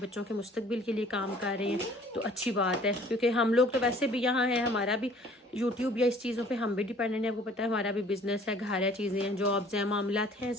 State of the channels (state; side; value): normal; both; correlation 0.53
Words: के मुस्तकबिल के लिए काम कर रहे हैं। तो अच्छी बात है, क्योंकि हम लोग तो वैसे भी यहाँ हैं, हमारा भी यूट्यूब या इस चीज़ों पे हम भी डिपेंडेंट है। आपको पता है हमारा भी बिजनेस है, घर है, चीज़ें हैं, जॉब्स हैं, मामलात हैं